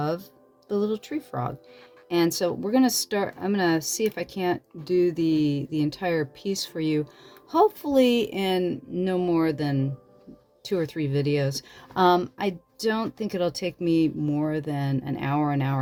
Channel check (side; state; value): both; identical; correlation 1.00